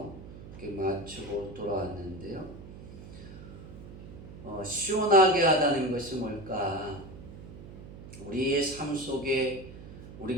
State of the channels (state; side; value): noise; right; hum, 14 dB below the sound